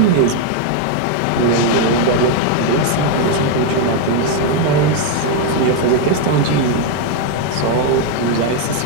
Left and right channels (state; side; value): different; both; correlation 0.01